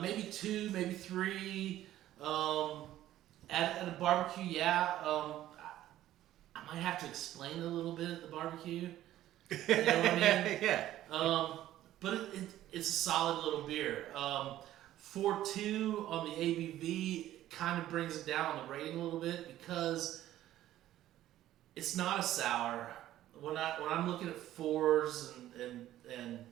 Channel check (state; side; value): quieter; left; 13.5 dB